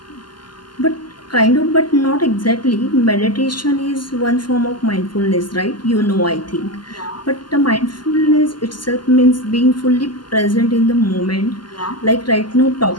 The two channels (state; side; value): late; right; 0.71 ms